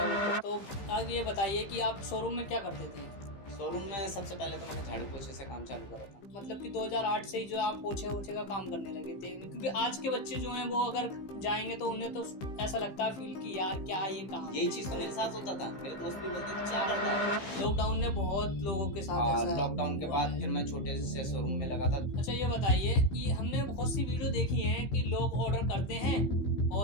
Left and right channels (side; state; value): right; late; 15 ms